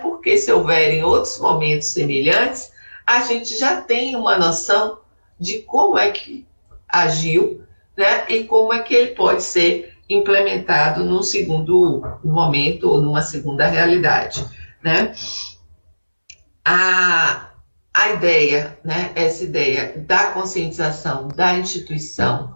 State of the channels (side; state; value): both; inverted; correlation -1.00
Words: se houverem outros momentos semelhantes, a gente já tem uma noção de como é que agiu, né, e como é que ele pode ser implementado num segundo momento ou numa segunda realidade, né? A ideia, né, essa ideia da conscientização da instituição,